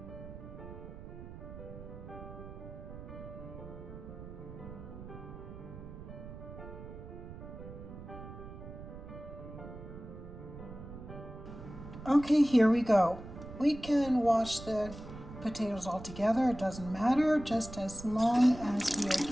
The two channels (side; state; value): right; noise; rumble, 12 dB below the sound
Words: Okay, here we go. We can wash the potatoes all together. It doesn't matter, just as long as we are